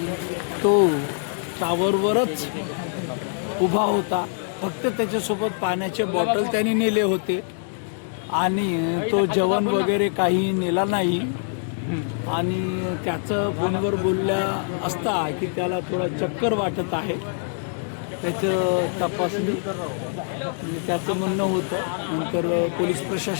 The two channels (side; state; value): right; silent; digital silence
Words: तो टावरवरच उभा होता. फक्त त्याच्यासोबत पाण्याचे बॉटल त्यांनी नेले होते आणि तो जेवण वगैरे काही नेला नाही. आणि त्याचं फोनवर बोलल्या असता की त्याला थोडा चक्कर वाटत आहे. त्याचं तपासणी त्याचं म्हणणं होतं. नंतर पोलीस